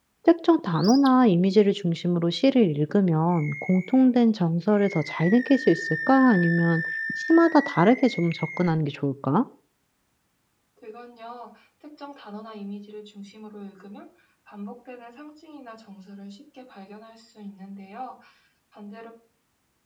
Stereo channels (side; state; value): both; identical; correlation 1.00